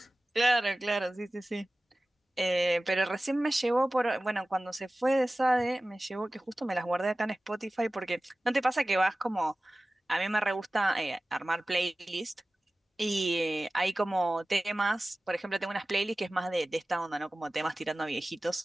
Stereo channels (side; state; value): both; normal; correlation 0.97